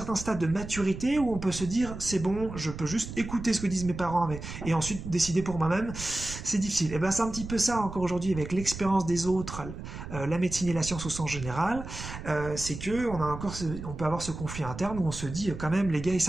stade de maturité où on peut se dire, c'est bon, je peux juste écouter ce que disent mes parents, et ensuite décider pour moi-même. C'est difficile. Et c'est un petit peu ça encore aujourd'hui avec l'expérience des autres, la médecine et la science au sens général. C'est que on peut avoir ce conflit interne où on se dit quand même, les gars ils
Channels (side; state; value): right; noise; rumble, 10 dB below the sound